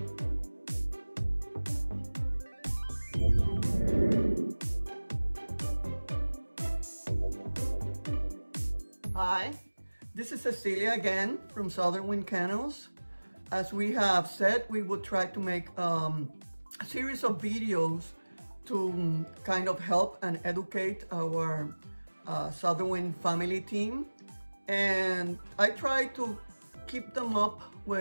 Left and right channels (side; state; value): both; inverted; correlation -1.00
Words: this is Cecilia again from Southernwind Kennels. As we have said, we would try to make a series of videos to kind of help and educate our Southernwind family team. And I try to keep them up